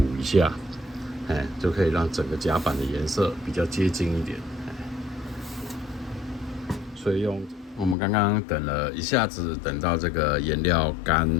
一下，就可以让整个甲板的颜色比较接近一点。所以我们刚刚等了一下子，等到这个颜料干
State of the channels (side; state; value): right; drops out; at 8.0 s